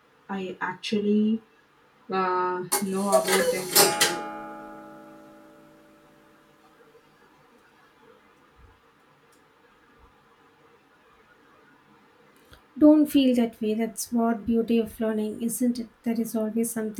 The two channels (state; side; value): identical; both; correlation 1.00